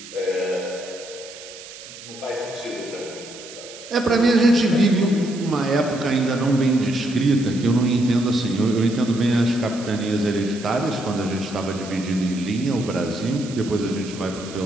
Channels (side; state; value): right; noise; hiss, 15 dB below the sound